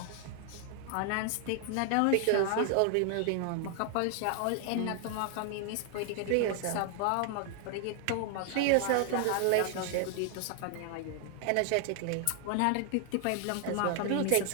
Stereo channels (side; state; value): both; different; correlation 0.00